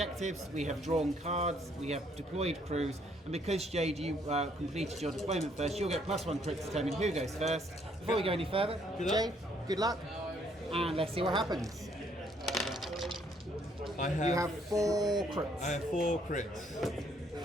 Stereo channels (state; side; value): normal; both; correlation 0.67